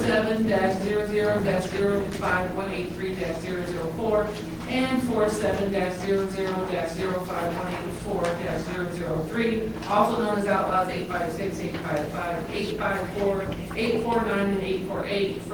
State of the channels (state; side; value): identical; both; correlation 1.00